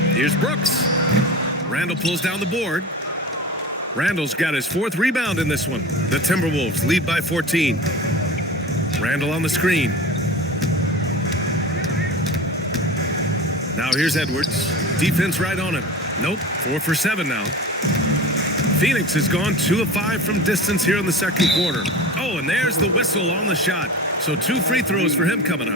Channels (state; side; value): normal; both; correlation 0.32